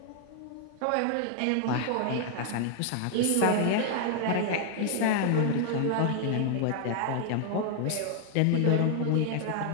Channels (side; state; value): both; different; correlation 0.00